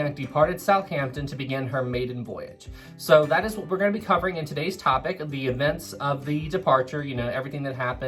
departed Southampton to begin her maiden voyage. So that is what we're going to be covering in today's topic, the events of the departure, you know, everything that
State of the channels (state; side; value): identical; both; correlation 1.00